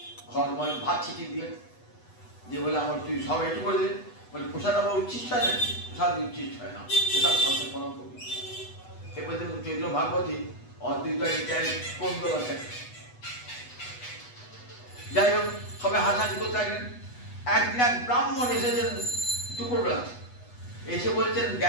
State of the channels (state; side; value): late; right; 8.1 ms